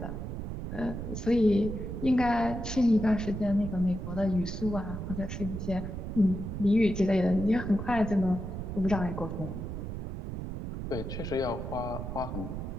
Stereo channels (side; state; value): right; noise; rumble, 6 dB below the sound